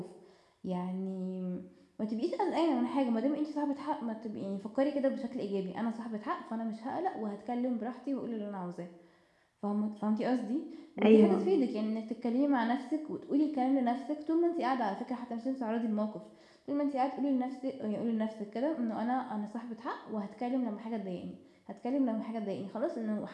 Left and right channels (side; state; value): both; identical; correlation 1.00